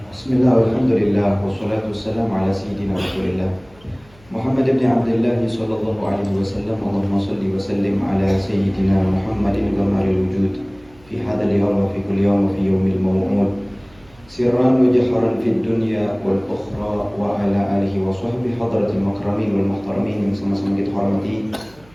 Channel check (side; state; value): right; noise; hum, 27 dB below the sound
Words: Bismillah, alhamdulillah, wassalatu wassalamu ala sayyidina Rasulillah Muhammad ibn Abdullah sallallahu alaihi wasallam. Allahumma salli wa sallim ala sayyidina Muhammadin ghamaril wujud fi hadzal yawm wa fi kulli yawm wa fi yawmil maw'ud sirran wa jahran fid dunya wal ukhra wa ala alihi wa sahbihi hadratil makramin wal muhtaramin yang sama-sama kita hormati